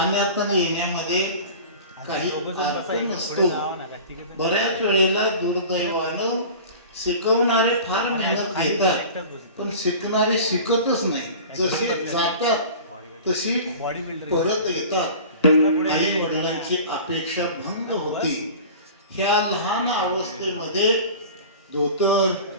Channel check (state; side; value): inverted; both; correlation -0.38